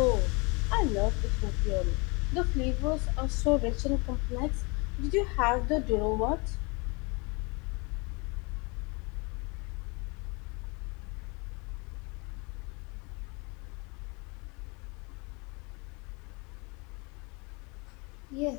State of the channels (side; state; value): right; quieter; 29.7 dB